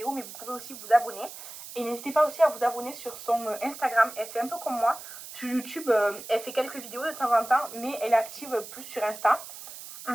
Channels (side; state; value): right; noise; hiss, 13 dB below the sound